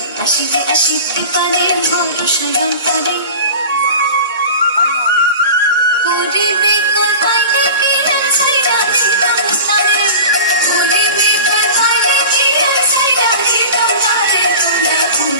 আসিলে আসিতে পারে ভরসা অন্তরে। করিবে কথায় নাকি সাইরা দিতাম তারে। করিবে কথায় নাকি সাইরা দিতাম তারে। তোমরা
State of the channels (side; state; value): both; inverted; correlation -0.35